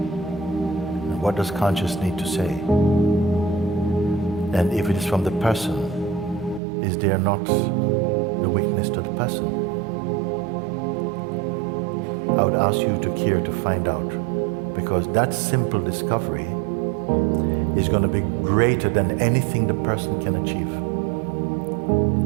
what does conscious need to say? And if it is from the person, is there not the weakness to the person? I would ask you to care to find out, because that simple discovery is going to be greater than anything the person can achieve.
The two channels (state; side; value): drops out; left; at 6.6 s